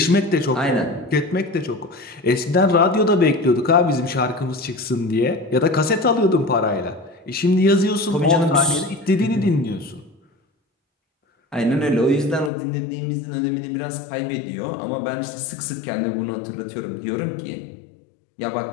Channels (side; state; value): right; drops out; at 12.5 s